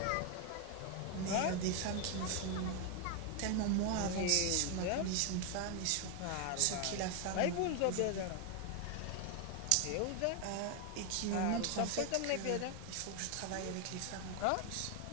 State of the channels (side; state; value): both; different; correlation 0.01